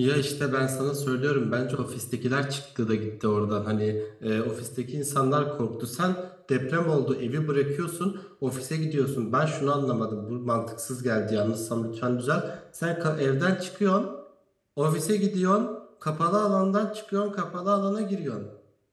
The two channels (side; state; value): both; identical; correlation 1.00